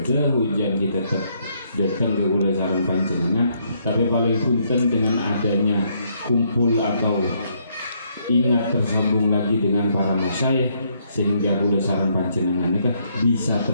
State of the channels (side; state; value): both; inverted; correlation -0.71